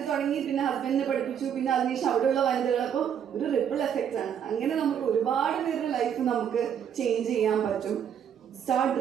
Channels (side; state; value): left; quieter; 8.6 dB